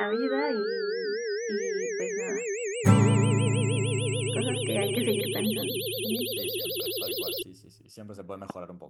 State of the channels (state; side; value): identical; both; correlation 1.00